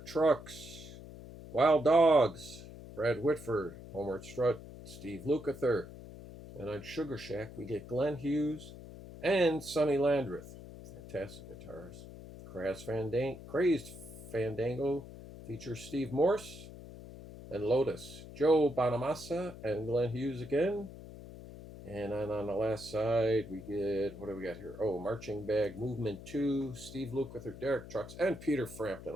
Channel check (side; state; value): left; noise; hum, 14 dB below the sound